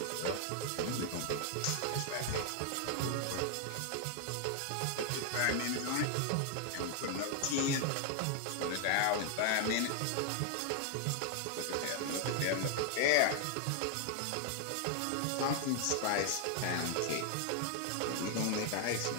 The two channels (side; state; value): both; different; correlation 0.00